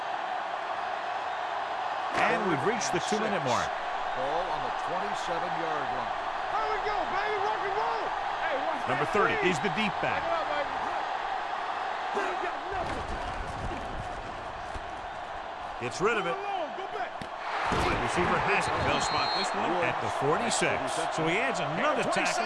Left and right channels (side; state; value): both; identical; correlation 1.00